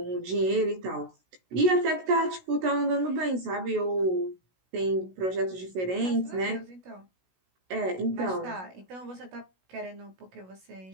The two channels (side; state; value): left; late; 16 ms